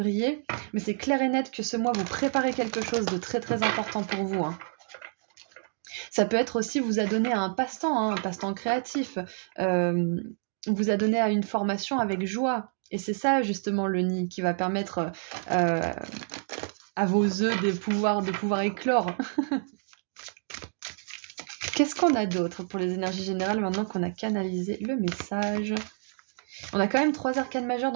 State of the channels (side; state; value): left; silent; digital silence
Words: mais c'est clair et net que ce mois vous préparez quelque chose de très très important pour vous. Ça peut être aussi vous a donné à un passe-temps créatif, vous a donné à une formation avec joie. Et c'est ça justement le nid qui va permettre à vos œufs de pouvoir éclore. Qu'est-ce qu'on a d'autre pour les énergies générales maintenant qu'on a canalisé le message? On a quand même 3 arcanes majeures,